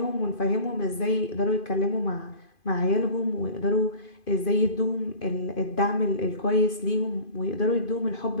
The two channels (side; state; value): right; late; 2.5 ms